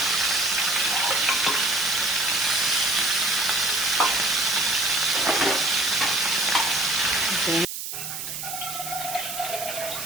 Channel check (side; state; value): right; noise; hiss, 6 dB below the sound